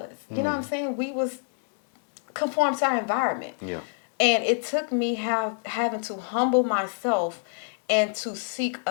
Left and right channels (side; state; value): right; silent; 60 dB below the other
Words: You know what I'm saying? We was conformed to our environment. Yeah. And it took me having to humble myself and to seek